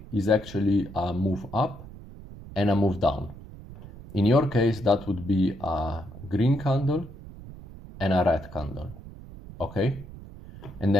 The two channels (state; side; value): noise; right; rumble, 15 dB below the sound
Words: is actually a move up and a move down. In your case, that would be a green candle and a red candle. Okay, and